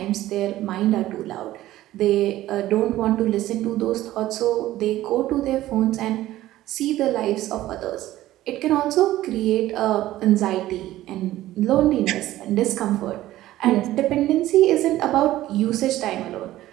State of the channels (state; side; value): quieter; left; 15.0 dB